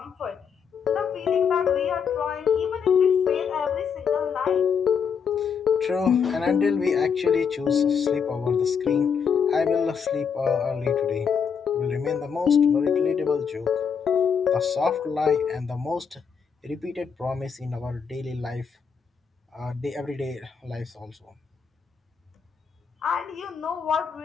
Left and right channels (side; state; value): right; quieter; 6.6 dB